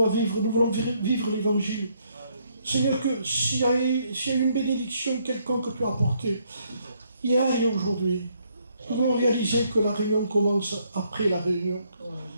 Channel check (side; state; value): both; inverted; correlation -0.71